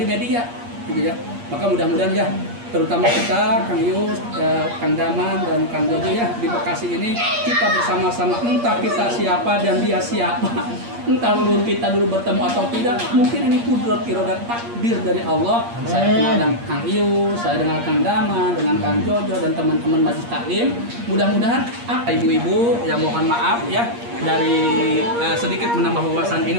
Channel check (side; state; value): left; late; 8.5 ms